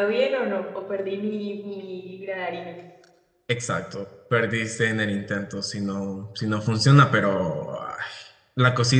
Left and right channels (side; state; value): both; identical; correlation 1.00